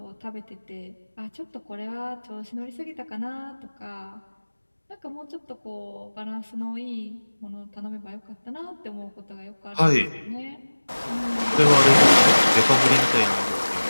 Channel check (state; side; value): inverted; both; correlation -1.00